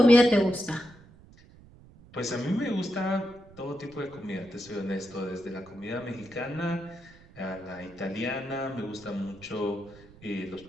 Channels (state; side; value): noise; right; rumble, 23 dB below the sound